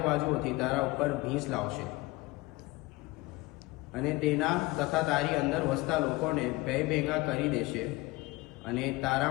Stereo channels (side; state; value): right; quieter; 21.6 dB